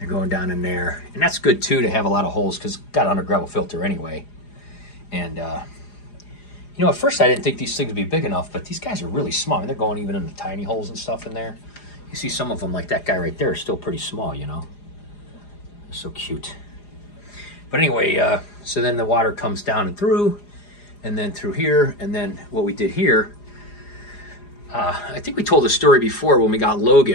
going down in there. And that's good, too, to have a lot of holes because it's got an under gravel filter anyway. And, you know, at first I didn't think these things would be big enough, but these guys are really small. I mean, they're going even in the tiny holes and stuff in there. You see some of them, like that guy right there, is still pretty small, you know. They're so cute. But anyway, so then the water comes down and through, and then through here, and then what we did here, I think we told the story before when we got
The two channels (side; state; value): right; late; 4.9 ms